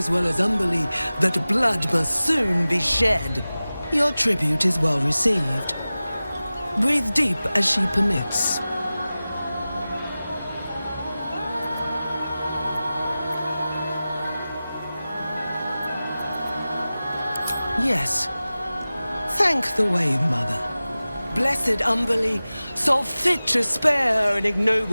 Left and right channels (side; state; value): both; inverted; correlation -0.97